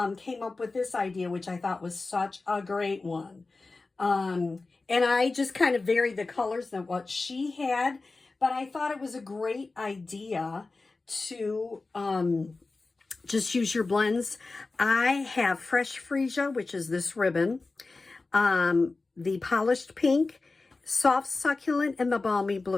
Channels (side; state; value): right; quieter; 3.6 dB